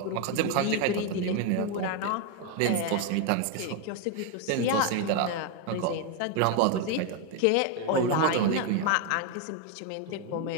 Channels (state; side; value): different; both; correlation 0.01